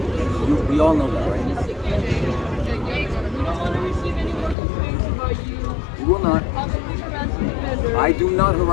We all know that, right? We don't want to receive any more complaints about you. We will not. Possibly harassing the vendors. I do not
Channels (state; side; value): drops out; right; at 4.5 s